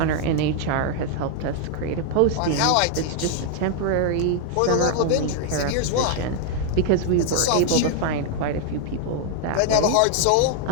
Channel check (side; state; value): both; different; correlation 0.00